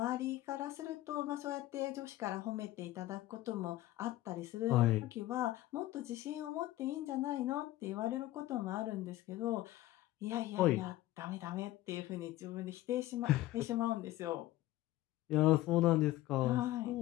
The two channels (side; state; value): right; quieter; 16.1 dB